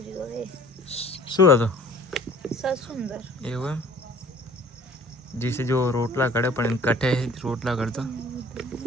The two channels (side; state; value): both; normal; correlation 0.51